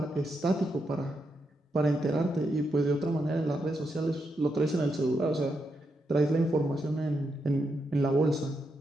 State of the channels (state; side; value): normal; both; correlation 0.83